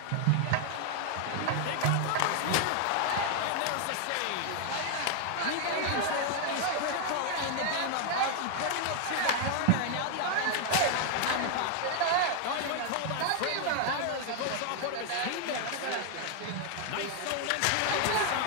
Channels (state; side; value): different; both; correlation 0.00